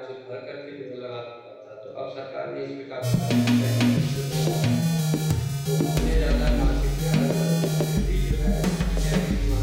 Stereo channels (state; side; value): identical; both; correlation 1.00